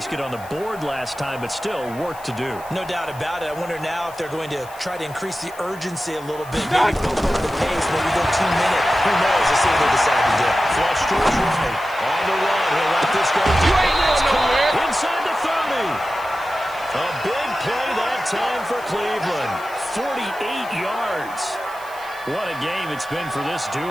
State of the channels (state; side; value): noise; left; hiss, 21 dB below the sound